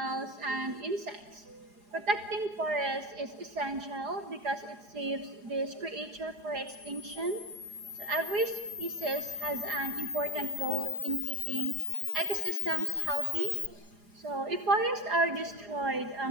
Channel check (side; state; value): left; late; 4.9 ms